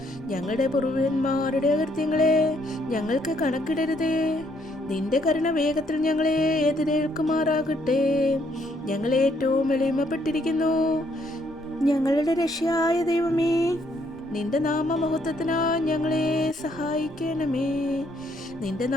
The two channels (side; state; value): both; normal; correlation 0.70